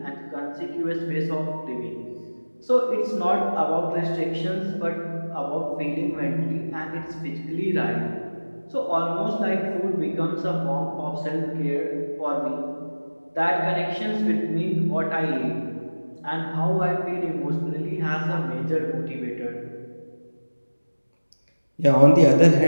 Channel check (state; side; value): inverted; both; correlation -1.00